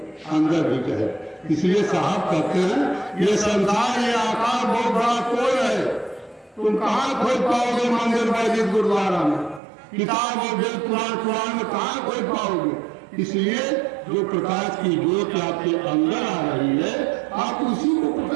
अंदर भी जाएगी। इसलिए साहब कहते हैं ये संसार ये आकार बहुत बड़ा कोई है, तुम कहाँ खोज पाओगे? मंदिर मस्जिद गुरुद्वारा में, किताब और वेद पुराण में कहाँ खोज पाओगे? इसलिए जो प्रकाश की ज्योत आपके अंदर आ रही है आप उसी को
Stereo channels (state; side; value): drops out; left; at 9.6 s